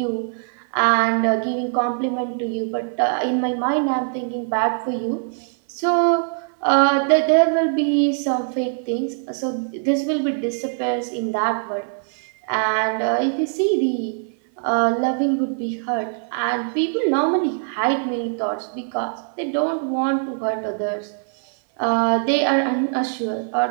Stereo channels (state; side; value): silent; left; 64 dB below the other